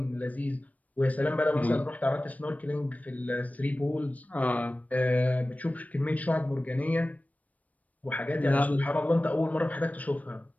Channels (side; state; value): right; late; 0.071 ms